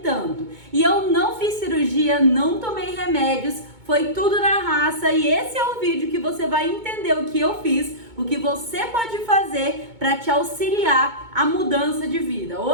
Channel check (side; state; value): left; late; 2.2 ms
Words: E eu não fiz cirurgia, não tomei remédios, foi tudo na raça, e esse é o vídeo que você vai entender o que eu fiz, o que você pode fazer para te auxiliar a mudança de vida.